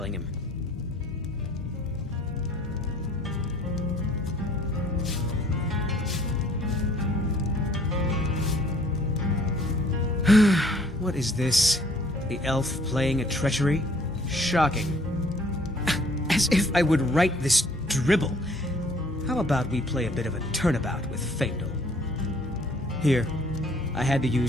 him. What is this? The elf playing a treachery? Shocking. As if I would write this dribble. How about we play a bit of a turnabout with Faendal? Here, I had to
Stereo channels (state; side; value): normal; both; correlation 0.58